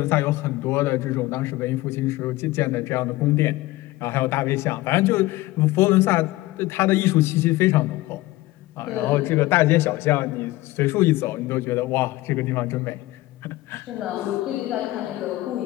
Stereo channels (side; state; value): right; quieter; 18.4 dB